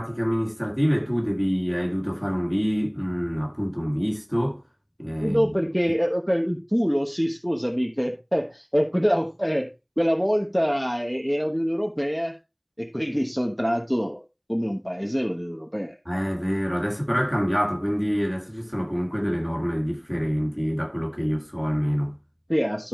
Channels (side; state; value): both; identical; correlation 1.00